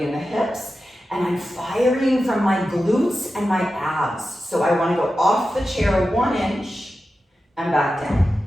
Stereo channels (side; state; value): both; normal; correlation 0.92